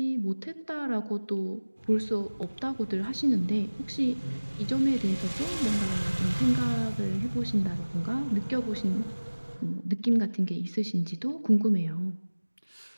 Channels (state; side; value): inverted; both; correlation -1.00